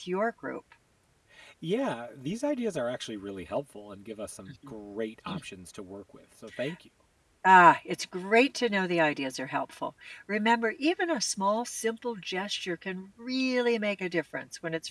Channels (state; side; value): identical; both; correlation 1.00